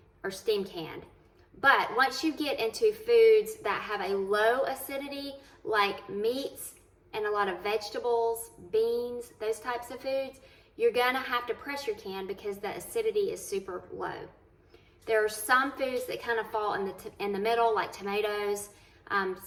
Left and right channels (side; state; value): both; identical; correlation 1.00